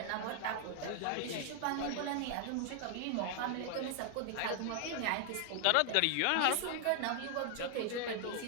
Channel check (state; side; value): different; both; correlation 0.00